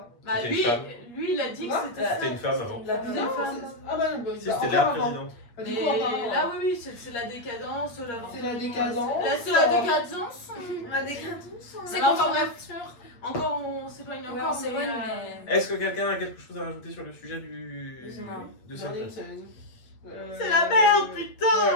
bah, C'était une lui, femme. lui, il a dit que Quoi c'était ça. C'était une femme avant. La Une femme. femme. Ah bah non, bah, Si, bah, c'était encore la avant. présidente. Bah, du Mais coup, encore avant. là, oui, c'est la décadence. C'est la décadence. Là, c'est la décadence. La décadence. C'est Alors, enfin, contre bref, encore, on s'éloigne Ouais, encore. on s'éloigne, mais, mais. Est-ce que quelqu'un a quelque chose à rajouter sur le sujet Non. de J'en ai une, cette C'est la merde, putain. Ouais,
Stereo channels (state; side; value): late; right; 8.6 ms